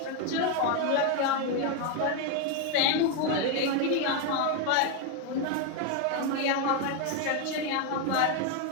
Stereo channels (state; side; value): different; both; correlation 0.02